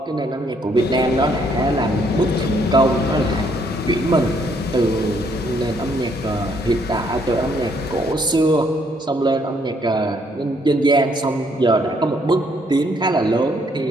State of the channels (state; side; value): normal; both; correlation 0.69